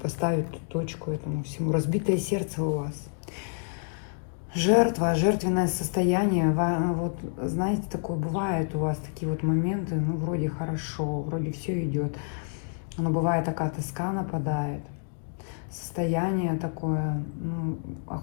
точку этому всему. Разбитое сердце у вас. Жертва, жертвенное состояние. Вот, знаете, такое бывает у вас, такие вот моменты. Ну, вроде хорошо, вроде все идет. Но бывает такая тоска нападает. Состояние такое, ну,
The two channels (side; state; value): right; silent; 59 dB below the other